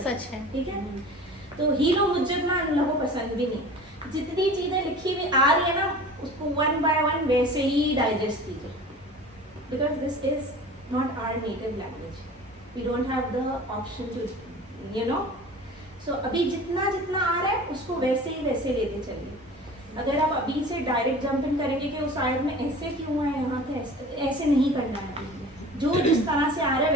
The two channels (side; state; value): both; normal; correlation 0.40